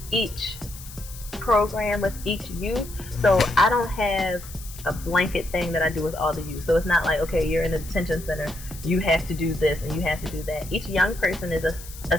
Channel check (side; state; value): left; noise; hiss, 16 dB below the sound